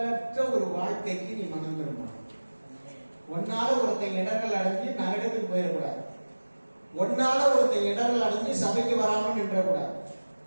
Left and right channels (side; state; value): both; inverted; correlation -1.00